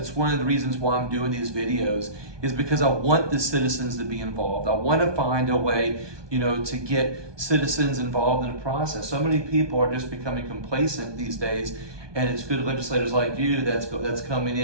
one of the reasons why I'm doing these videos, is because I want the citizens to be involved. I want to find a way, to get citizens involved in the process. So many people are just becoming complacent these days, and it's good legislators like you that's coming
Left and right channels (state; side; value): late; left; 1.2 ms